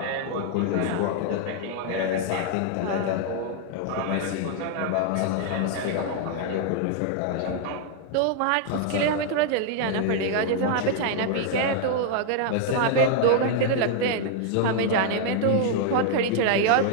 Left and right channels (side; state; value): both; different; correlation 0.00